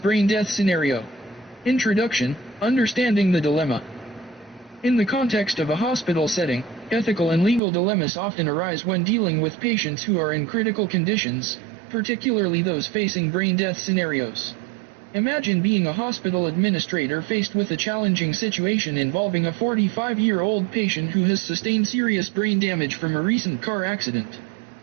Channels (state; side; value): drops out; left; at 7.6 s